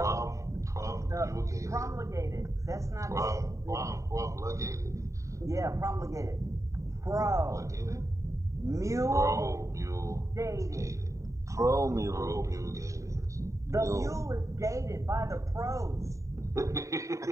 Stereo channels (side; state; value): left; late; 0.15 ms